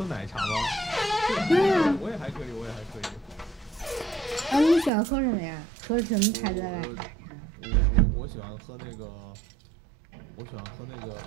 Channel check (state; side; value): drops out; left; at 4.9 s